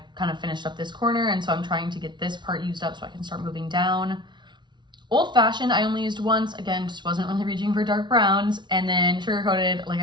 kind of finished up this corner, and so I'm trying to get this part used up so I can start moving down. Old Fashioned, I only used once. Again, just wasn't really reaching for dark browns. And then Sugar Coated, like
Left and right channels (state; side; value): late; left; 0.22 ms